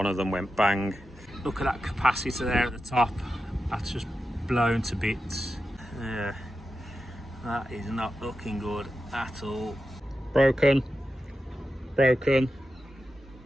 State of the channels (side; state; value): both; normal; correlation 0.91